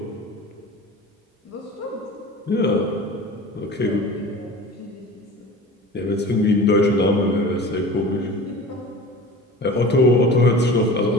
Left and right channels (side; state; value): both; normal; correlation 0.38